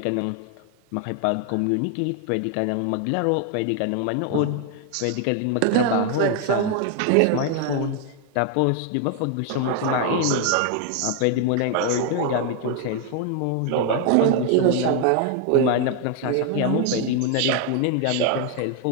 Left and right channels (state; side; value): different; both; correlation 0.01